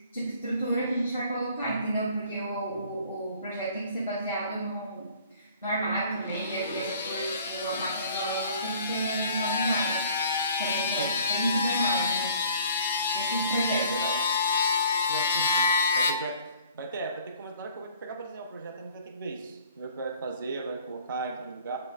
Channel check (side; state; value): both; inverted; correlation -0.54